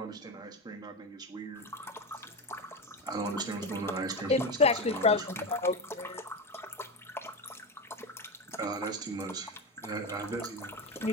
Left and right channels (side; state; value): both; normal; correlation 0.18